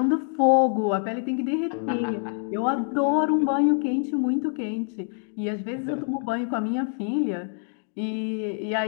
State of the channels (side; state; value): right; silent; 56 dB below the other